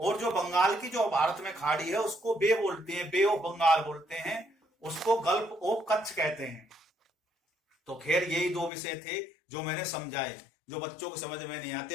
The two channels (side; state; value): right; drops out; at 8.7 s